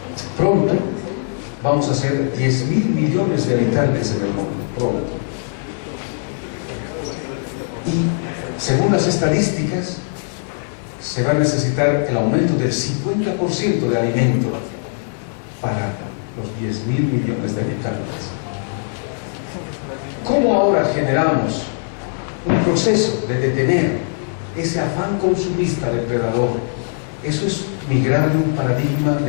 Pronto vamos a ser 10.000 millones de habitantes en el mundo, pronto. Y según las estadísticas, se va a necesitar el aumento del 50% de alimento para los 10.000 millones de habitantes. ¿Cómo ahora generamos un proceso de detener ese afán consumista depredador? Eso es migrar de un paradigma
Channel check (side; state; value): right; silent; 60 dB below the other